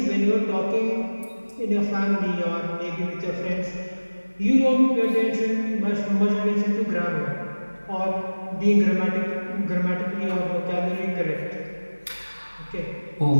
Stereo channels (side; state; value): both; inverted; correlation -1.00